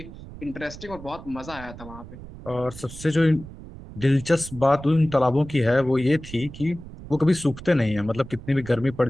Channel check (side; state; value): right; noise; rumble, 15 dB below the sound